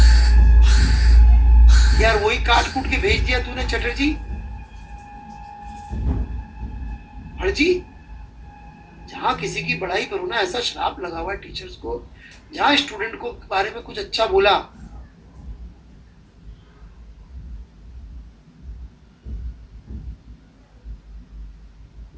यार, वही काट कूट के भेज दिया तूने चटर्जी। हरजी, जहाँ किसी की बड़ाई करो ना, ऐसा श्राप लगा हुआ है टीचर्स को, जहाँ स्टूडेंट को बारे में कुछ अच्छा बोला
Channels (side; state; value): both; identical; correlation 1.00